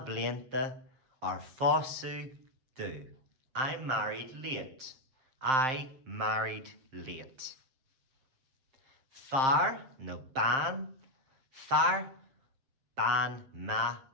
blianta ar fosú du. I married late. I married late. Far no ban. Far ban ma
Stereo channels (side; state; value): left; late; 7.5 ms